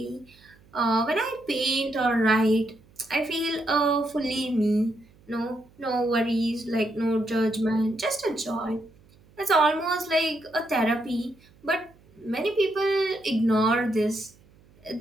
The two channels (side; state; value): right; noise; hum, 29 dB below the sound